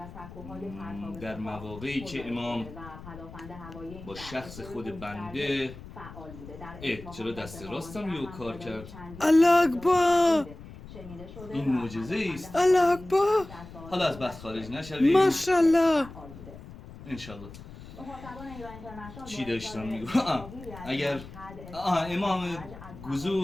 در مواقعی که امام با شخص خود بنده چرا دست راستم یو کار کرد؟ الله اکبر. این معجزه است. الله اکبر. حالا از بحث خارج نشویم. ماشاءالله. انشالله. چی داشتم میگم؟ اگر امام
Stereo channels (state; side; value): noise; left; rumble, 15 dB below the sound